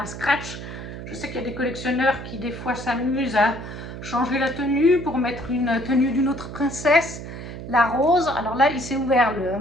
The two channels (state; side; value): noise; right; hum, 10 dB below the sound